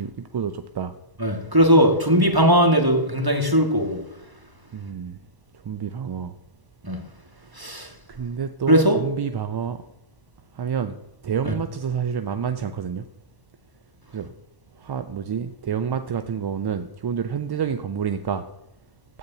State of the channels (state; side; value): late; left; 1.0 ms